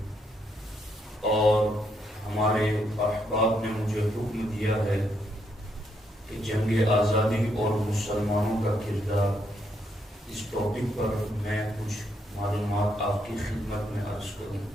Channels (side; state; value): both; normal; correlation 0.76